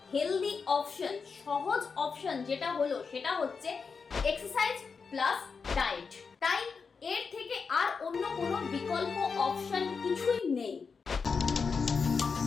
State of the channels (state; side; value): quieter; right; 5.3 dB